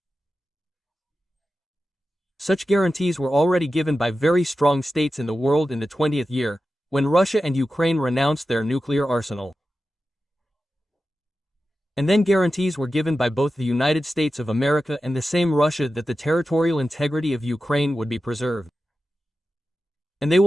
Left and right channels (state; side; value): normal; both; correlation 0.92